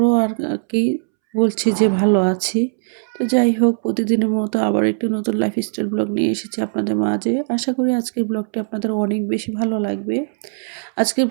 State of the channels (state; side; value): silent; left; 66 dB below the other